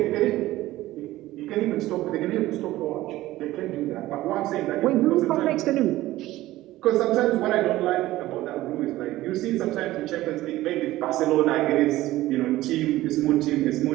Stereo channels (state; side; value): quieter; left; 16.3 dB